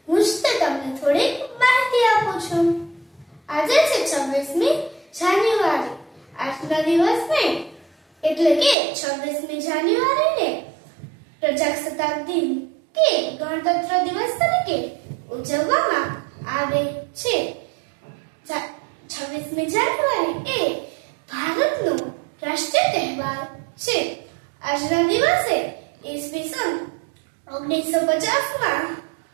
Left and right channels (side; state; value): left; drops out; at 8.8 s